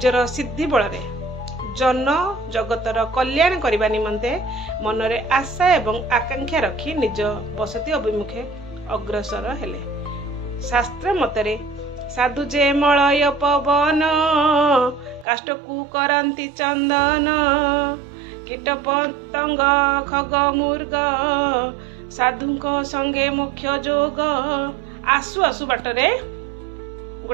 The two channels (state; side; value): drops out; left; at 15.2 s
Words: सिद्धि बल रे जन जगतर कल्याण करने निमंते मनरे आशा एवं आकांक्षा रखी निज बसती अभिमुखे अग्रसर हेले। शास्त्र मतरे साधु जे मलय पवन काष्ठकू करंती चंदन कीट पतंग खग मुर्ग साधुंक संगे मुख्य जोग। आसु आसु बाटरे